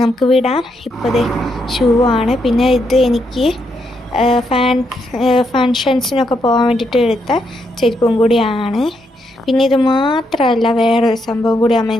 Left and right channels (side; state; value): both; normal; correlation 0.79